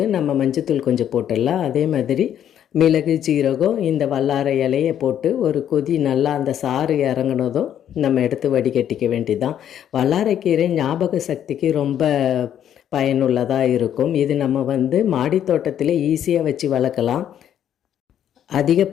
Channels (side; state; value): right; quieter; 10.1 dB